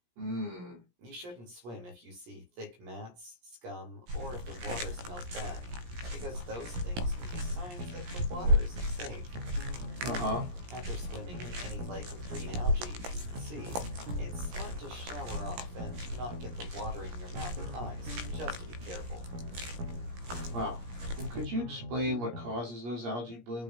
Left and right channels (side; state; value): left; late; 17 ms